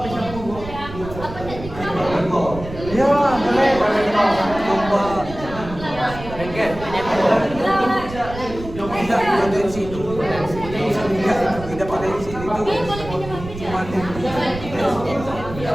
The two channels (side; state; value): right; noise; rumble, 12 dB below the sound